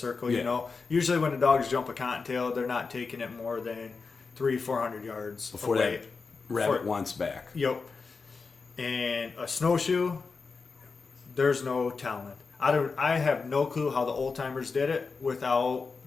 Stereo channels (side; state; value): right; quieter; 4.6 dB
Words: Yeah. You know, usually when the dogs jump a cottontail, they're not taking it more than 300-400 yards before away. that rabbit wants back. Yep. And a snowshoe, there's no telling. I have no clue how the old timers did it without